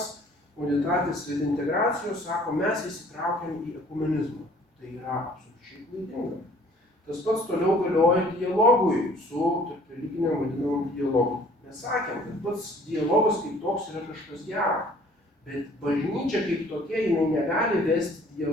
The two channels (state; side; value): normal; both; correlation 0.54